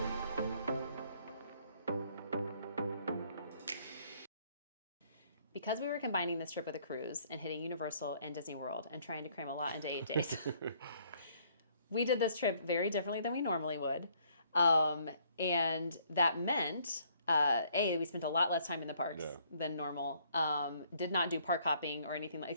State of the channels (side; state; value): both; inverted; correlation -0.65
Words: Because we were combining this trip with a cruise and hitting Universal and Disney World and trying to cram a lot into 8 days, we did this trip very differently than we normally would. And that meant, we spent a lot less time in the parks than normal. Did not do park hopping or anything,